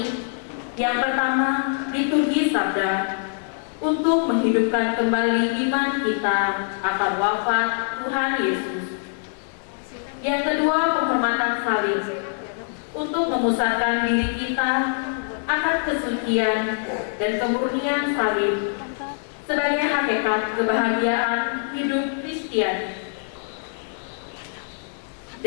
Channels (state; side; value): silent; right; digital silence